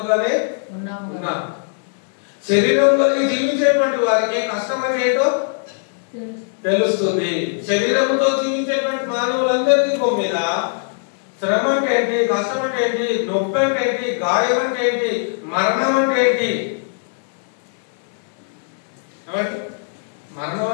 ఉన్నాం. శరీరం కలిగి జీవించేటువంటి వారికి కష్టం అంటే ఏంటో తెలుస్తుంది. శరీరంతో జీవించేటువంటి మానవులందరికీ మీద శ్రమ అంటే ఏంటి, కష్టం అంటే ఏంటి, నొప్పి అంటే ఏంటి, గాయం అంటే ఏంటి, మరణం అంటే ఏంటి, మరణం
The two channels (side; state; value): right; silent; 63 dB below the other